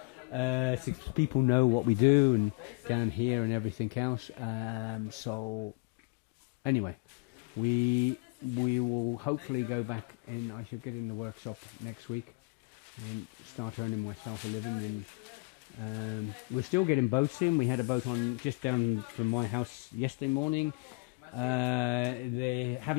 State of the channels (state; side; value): quieter; right; 29.1 dB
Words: so people know what we do and down here and everything else. So anyway, we will hopefully go back, and I shall get in the workshop next week and start earning myself a living. And we're still getting boats in. We had a boat on just down from my house yesterday morning. They